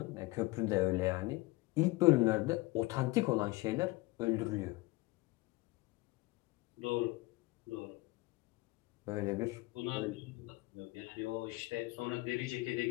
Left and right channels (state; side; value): quieter; right; 21.7 dB